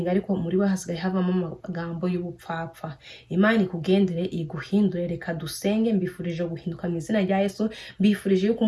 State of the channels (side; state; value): both; identical; correlation 1.00